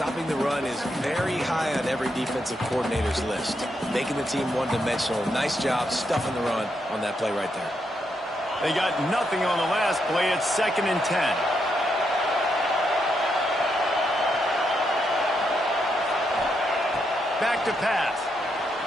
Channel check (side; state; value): both; normal; correlation 0.80